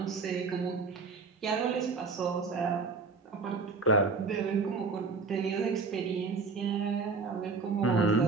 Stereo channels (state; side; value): quieter; left; 4.4 dB